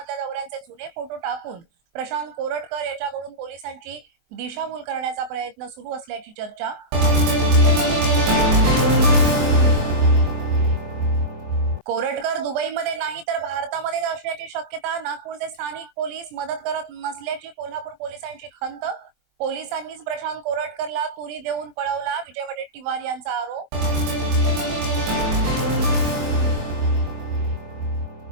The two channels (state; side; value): late; left; 24 ms